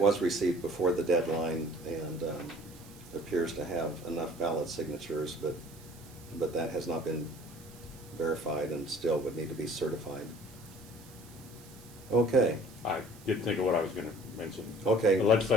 received before the deadline, and appears to have enough valid signatures, but that has not been verified and still would need to be certified. Okay. I did think of what I was gonna mention. Okay, The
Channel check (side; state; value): right; noise; hiss, 22 dB below the sound